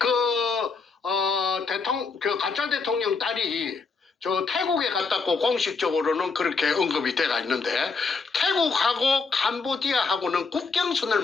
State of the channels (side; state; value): right; quieter; 4.6 dB